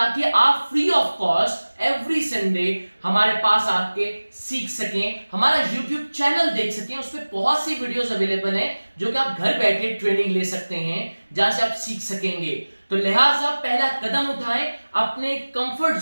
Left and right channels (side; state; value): both; inverted; correlation -1.00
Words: आप free of cost every Sunday हमारे पास आके सीख सकें, हमारा YouTube चैनल देख सकें। उस पर बहुत सी वीडियोस अवेलेबल हैं जो कि आप घर बैठे ट्रेनिंग ले सकते हैं, जहां से आप सीख सकेंगे। तो लिहाजा पहला कदम उठाएं, अपने कंफर्ट